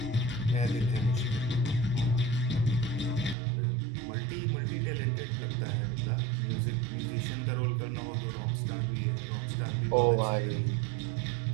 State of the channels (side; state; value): left; drops out; at 3.4 s